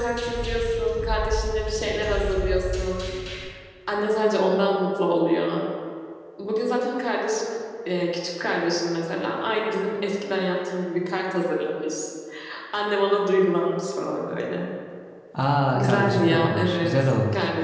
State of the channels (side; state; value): both; identical; correlation 1.00